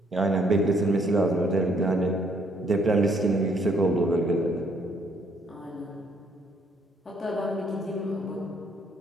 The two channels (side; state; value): both; normal; correlation 0.68